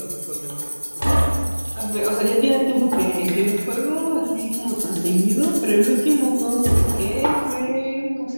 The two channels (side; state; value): both; inverted; correlation -1.00